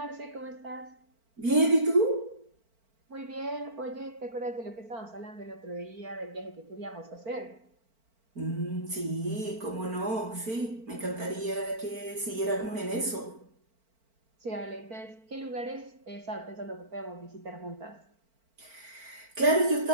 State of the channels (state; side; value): late; left; 4.4 ms